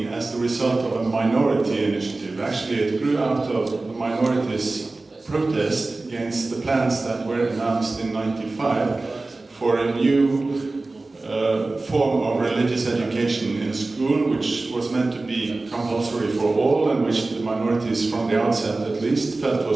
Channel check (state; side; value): quieter; left; 3.3 dB